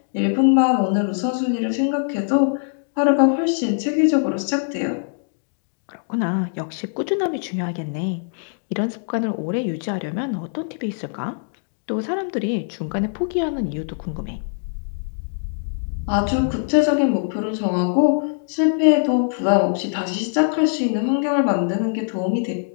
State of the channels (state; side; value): silent; right; digital silence